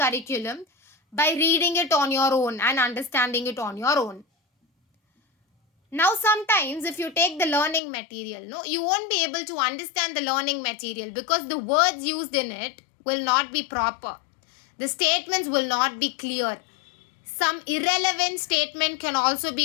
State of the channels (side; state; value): right; drops out; at 7.8 s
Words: by reading it on your own and understanding it on your own. Now sometimes if you take the learning material, you won't be able to understand the learning material because the words used in it will not be proper. The statements will not be clear. Some irrelevant statement can also